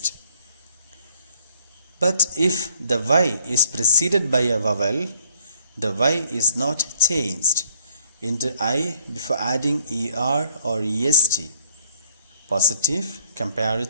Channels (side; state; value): both; inverted; correlation -0.64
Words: But if the y is preceded by a vowel, the y is not changed into I before adding er or est. Positive,